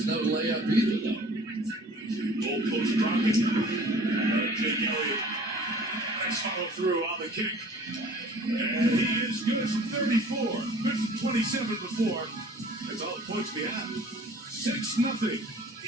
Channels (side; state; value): both; normal; correlation 0.48